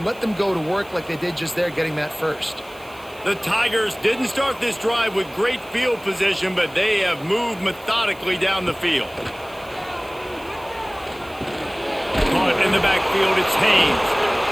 let them go to work like they did just there, getting that first. The Tigers didn't start this drive with great field position, but they have moved methodically down the field. Caught in the backfield, it's Haynes.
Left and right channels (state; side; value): noise; right; hiss, 24 dB below the sound